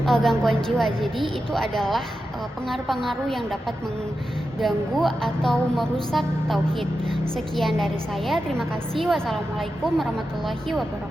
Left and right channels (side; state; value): both; normal; correlation 0.90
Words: gangguan jiwa. Jadi itu adalah pengaruh-pengaruh yang dapat mengganggu atau merusak tauhid. Sekian dari saya, terima kasih. Wassalamualaikum warahmatullahi